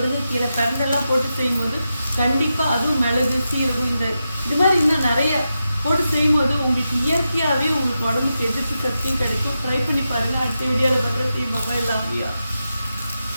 பிரண்டெல்லாம் போட்டு செய்யும்போது கண்டிப்பாக அதுவும் மிளகு, சீரகம் இது மாதிரி இன்னும் நிறைய போட்டு செய்யும்போது உங்களுக்கு இயற்கையாகவே உங்களுக்கு உடம்புக்கு எதிர்ப்பு சக்தியும் கிடைக்கும். ட்ரை பண்ணி பாருங்கள். அடுத்த வீடியோவில் பார்க்குற செய்வாங்க எல்லாமே.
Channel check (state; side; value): inverted; both; correlation -0.89